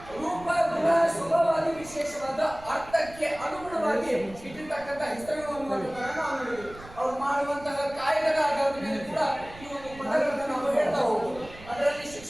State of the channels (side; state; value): right; noise; rumble, 18 dB below the sound